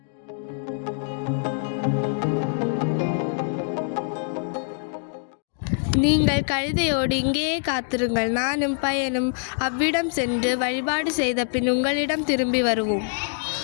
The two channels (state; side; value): silent; right; digital silence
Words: நீங்கள் கழுதையோடு இங்கேயே காத்திருங்கள். நானும் பையனும் அவ்விடம் சென்று வழிபாடு செய்த பின் உங்களிடம் திரும்பி வருவோம்.